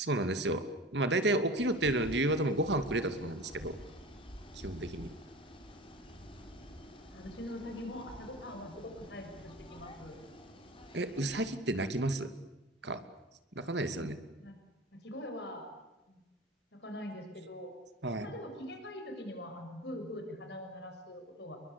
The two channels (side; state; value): both; normal; correlation 0.35